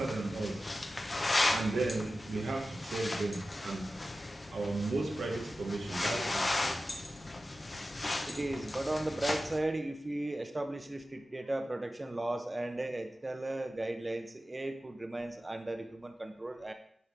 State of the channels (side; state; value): both; normal; correlation 0.94